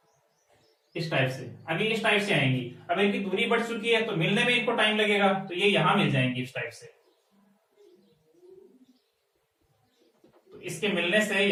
इस टाइप से। अभी इस टाइप से आएंगी, अब इनकी दूरी बढ़ चुकी है तो मिलने में इनको टाइम लगेगा, तो ये यहां मिल जाएंगी इस टाइप से। तो इसके मिलने से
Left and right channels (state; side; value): identical; both; correlation 1.00